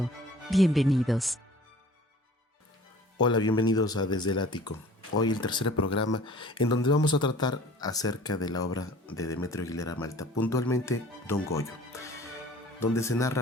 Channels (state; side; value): normal; both; correlation 0.48